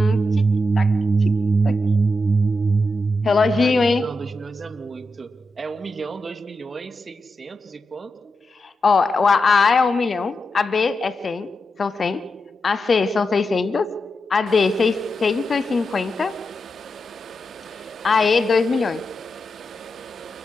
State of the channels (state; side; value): normal; both; correlation 0.88